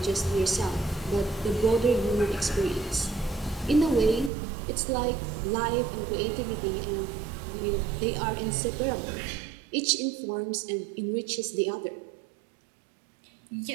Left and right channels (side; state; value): left; drops out; at 4.3 s